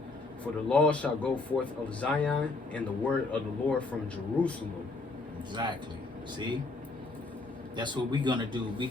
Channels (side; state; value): right; quieter; 3.5 dB